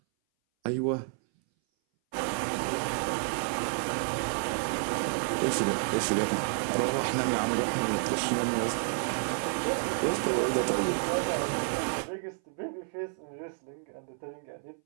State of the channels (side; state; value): left; silent; 58 dB below the other